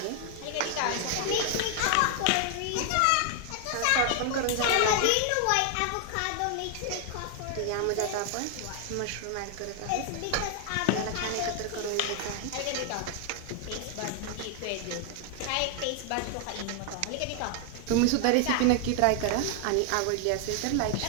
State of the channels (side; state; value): both; different; correlation 0.00